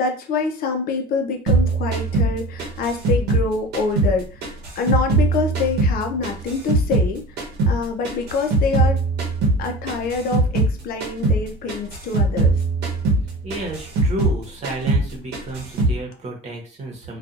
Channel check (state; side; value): normal; both; correlation 0.34